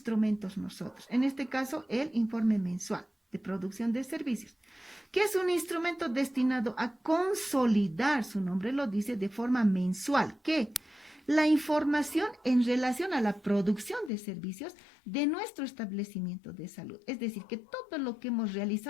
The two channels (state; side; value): drops out; right; at 14.1 s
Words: nosotros. En este caso, el informe mensual de producción de servicios, que es un instrumento destinado a consolidar, su nombre lo dice, de forma mensual, que la información en relación a la producción de servicios de nuestro establecimiento de salud. Es decir, que todo lo que hemos